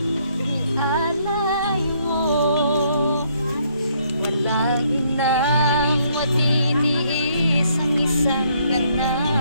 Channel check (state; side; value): inverted; both; correlation -0.69